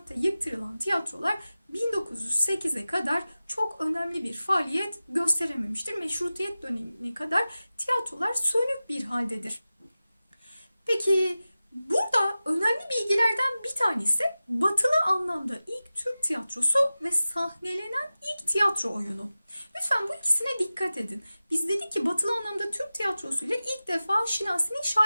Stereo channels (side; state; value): both; inverted; correlation -0.96